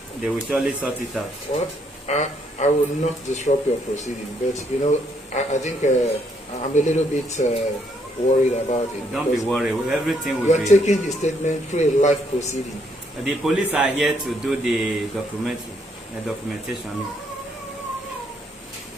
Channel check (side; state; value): both; normal; correlation 0.71